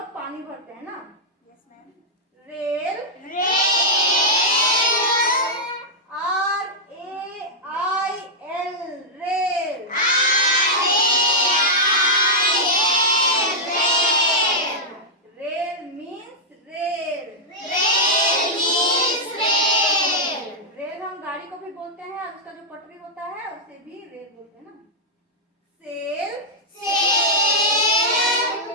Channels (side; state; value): both; normal; correlation -0.06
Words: पानी भरते हैं ना। Rail. Rail. Rail means rail. Rail हम गाड़ी को भी बोलते हैं और उसका जो पटरी होता है उसे भी रेल बोलते हैं ना। सेल। सेल।